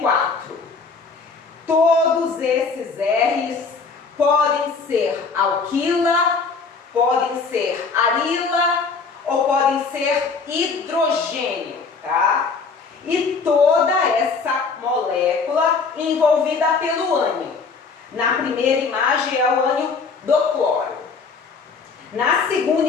Todos esses R's podem ser alquila, podem ser arila ou podem ser hidrogênio, tá? E toda essa molécula envolvida pelo ânion. Na primeira imagem é o ânion do cloro. Na segunda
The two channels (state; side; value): quieter; right; 4.8 dB